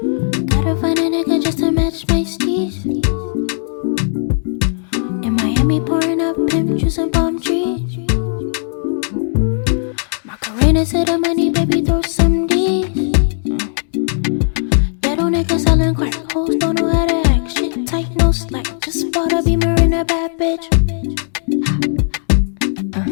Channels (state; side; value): silent; right; digital silence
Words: Gotta find a nigga just to match my steez. In Miami, pouring up pimp juice and palm trees. Macarena to the money, baby, throw some D's. That old nigga selling crack, hoes don't know how to act. Shit tight, no slack. Just bought a Beamer in a bad bitch.